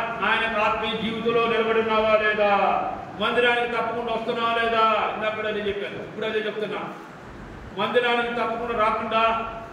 ఆత్మీయ జీవితంలో నిలబడి ఉన్నావా లేదా, మందిరానికి తప్పకుండా వస్తున్నావా లేదా, ఇందాక అదే చెప్పాను, ఇప్పుడు అదే చెప్తున్నా. మందిరానికి తప్పకుండా రాకుండా,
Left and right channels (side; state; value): both; identical; correlation 1.00